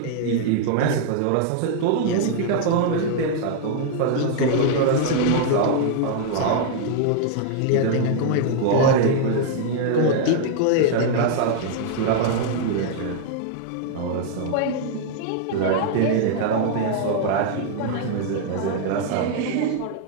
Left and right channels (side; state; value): both; different; correlation -0.01